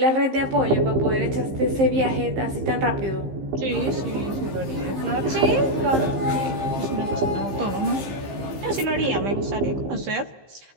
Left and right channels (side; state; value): left; late; 15 ms